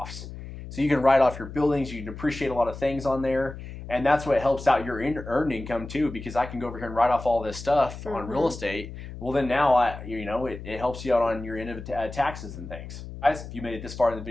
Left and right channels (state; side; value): noise; left; hum, 11 dB below the sound